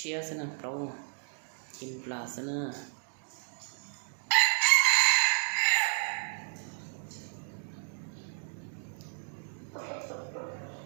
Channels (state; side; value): silent; left; digital silence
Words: thế nè lâu chim là thế nè